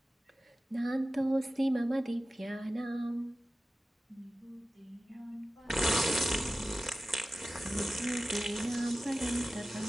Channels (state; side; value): normal; both; correlation 0.96